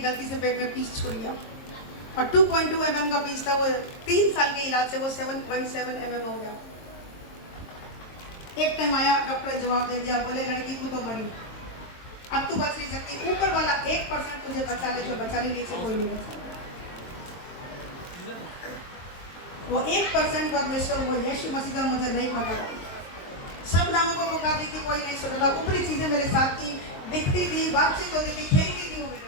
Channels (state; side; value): late; right; 22 ms